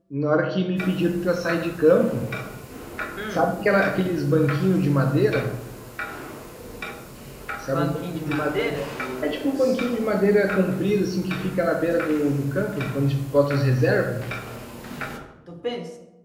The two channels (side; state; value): both; identical; correlation 1.00